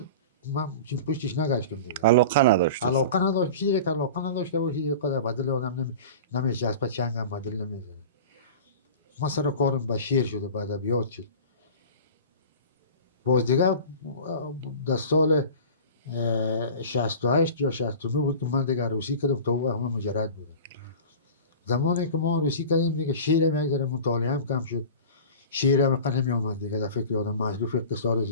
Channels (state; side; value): inverted; both; correlation -0.36